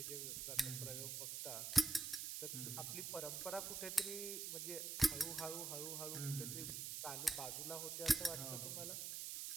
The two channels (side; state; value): right; noise; hiss, 3 dB below the sound